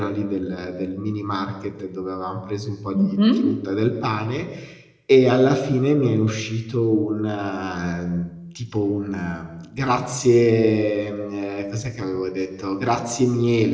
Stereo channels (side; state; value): both; identical; correlation 1.00